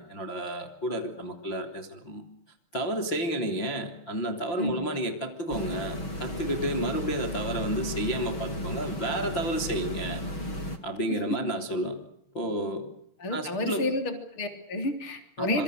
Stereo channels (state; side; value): late; right; 5.9 ms